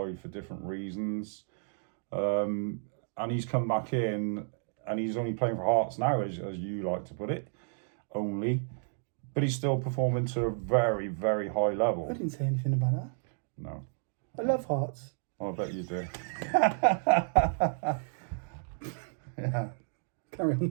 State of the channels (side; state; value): left; silent; digital silence